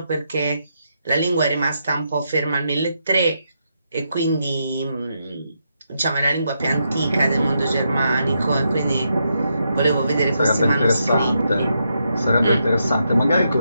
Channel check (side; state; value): both; inverted; correlation -0.81